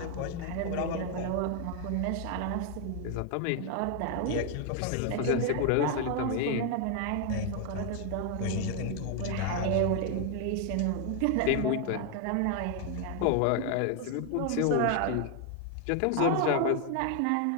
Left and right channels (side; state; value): both; different; correlation 0.00